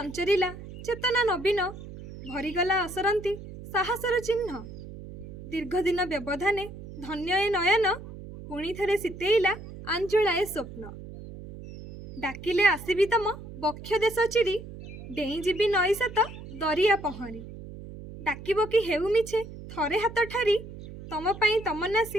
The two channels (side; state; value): right; noise; hum, 13 dB below the sound